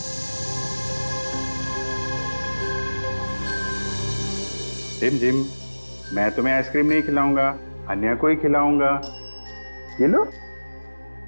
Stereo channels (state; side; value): inverted; both; correlation -1.00